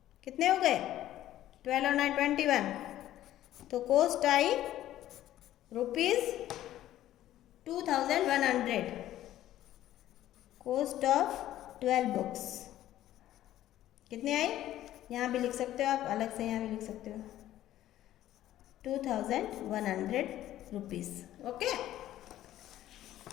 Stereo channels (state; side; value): quieter; right; 13.3 dB